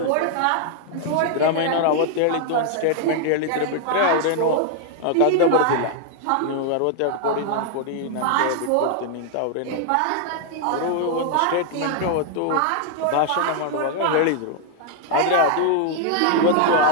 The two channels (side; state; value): both; different; correlation 0.00